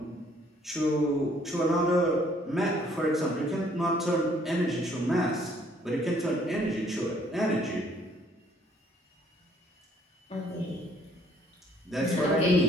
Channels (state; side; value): normal; both; correlation 0.63